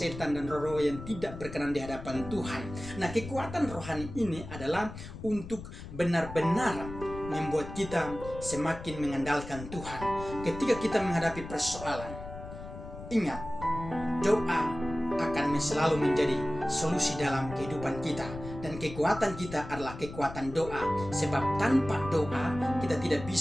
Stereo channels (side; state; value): left; noise; rumble, 11 dB below the sound